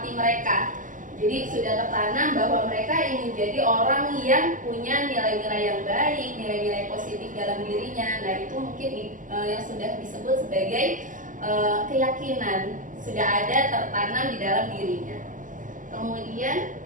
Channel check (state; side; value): late; left; 0.38 ms